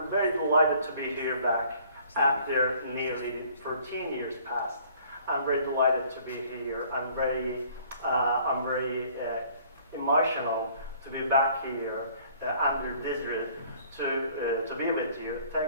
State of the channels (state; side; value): inverted; both; correlation -0.57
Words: very delighted to be here back after nearly 13 years past. I'm very delighted to be here. I'm very emotional to be back here under this roof to be with you.